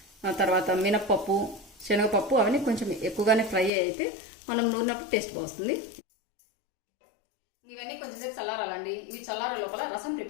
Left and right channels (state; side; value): drops out; right; at 3.7 s